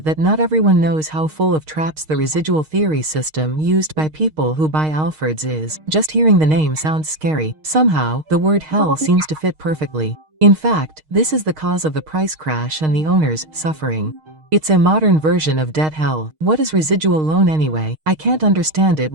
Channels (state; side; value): late; left; 6.4 ms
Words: that not everyone knows how full of traps the residual theory system used by people who buy Alfords is. Just hearing the name sounds scary. Somehow, the word hell seems to fit perfectly. In fact, this is the cause of the price crash and the owners suffering. It's a modern version of debt hell. What is residual loan anyway? I can't understand it